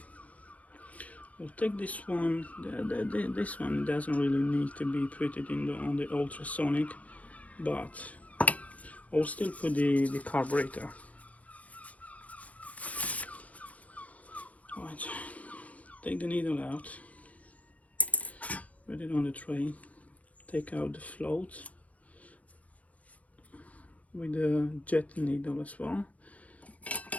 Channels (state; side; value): late; right; 0.069 ms